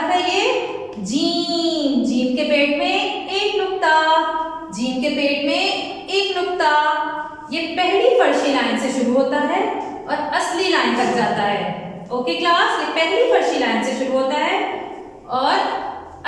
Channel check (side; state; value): both; identical; correlation 1.00